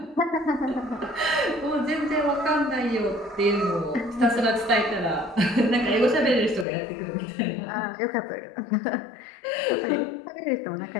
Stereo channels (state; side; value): drops out; right; at 6.7 s